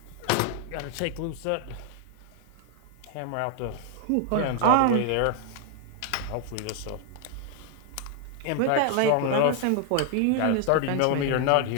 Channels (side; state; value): both; different; correlation 0.00